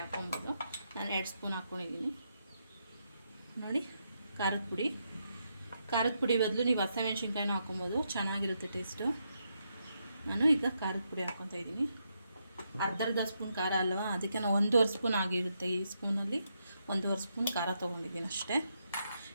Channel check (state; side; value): inverted; both; correlation -0.81